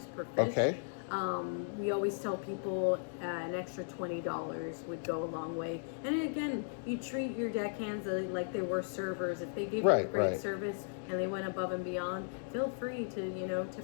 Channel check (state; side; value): silent; right; digital silence